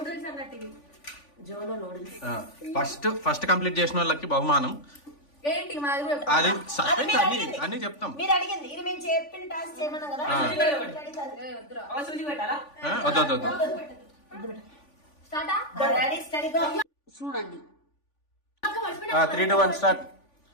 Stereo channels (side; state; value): right; late; 3.5 ms